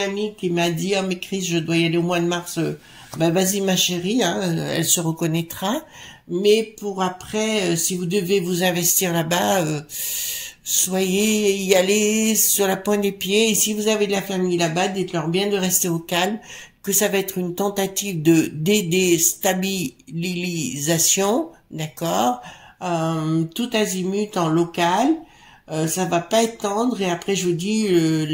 amie qui m'a dit, « Oh, mais Chris, je dois y aller au mois de mars. Ben, vas-y, ma chérie, hein, elle se reconnaîtra. Mais pour après, si vous devez vous investir là-bas, soyez y aller sur la pointe des pieds. Et si vous avez de la famille là-bas, dites-leur bien de rester au calme, que ça va être une tentative de déstabilisation, d'accord, tout azimut en local. Ça va pas être tendre et après je vous dis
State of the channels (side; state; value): both; identical; correlation 1.00